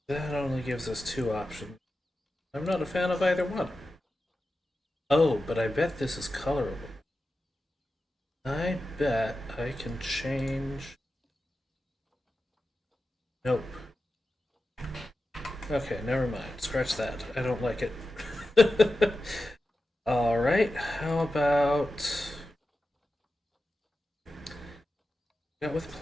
That only gives us two options. I'm not a fan of either one. Oh, but I bet this is colorable. I bet I can change... Nope. Okay, never mind. Scratch that. I don't like it. Alright, how about... Got with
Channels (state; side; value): normal; both; correlation 0.92